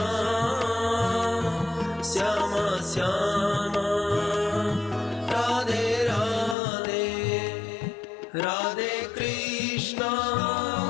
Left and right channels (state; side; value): drops out; right; at 6.6 s